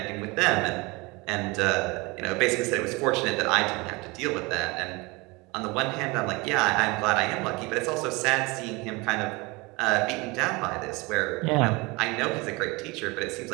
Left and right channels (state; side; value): quieter; left; 25.4 dB